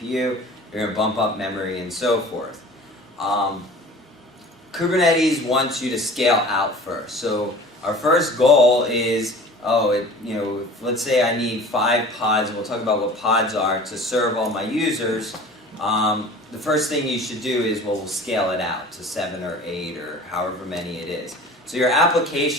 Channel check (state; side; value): normal; both; correlation 0.43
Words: you're going to bump up memory, and so forth. Kubernetes wants you to scale out first. So our first goal is, let's say I need 5 pods, and we'll talk about what pods are, to serve all my users. The first thing you should do is, we'll scale it out to 7 or 8 or however many it is. So your